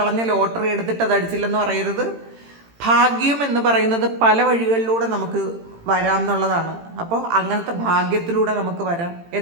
ലോട്ടറി എടുത്തിട്ട് അത് അടിച്ചില്ലെന്ന് പറയരുത്. ഭാഗ്യം എന്ന് പറയുന്നത് പല വഴികളിലൂടെ നമുക്ക് വരാം എന്നുള്ളതാണ്. അപ്പോൾ അങ്ങനത്തെ ഭാഗ്യത്തിലൂടെ നമുക്ക് വരാം.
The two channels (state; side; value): late; left; 18 ms